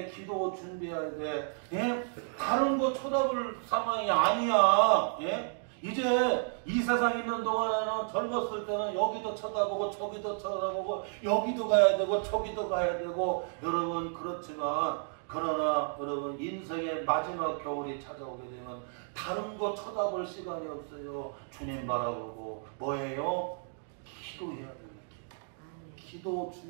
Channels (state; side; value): silent; left; 56 dB below the other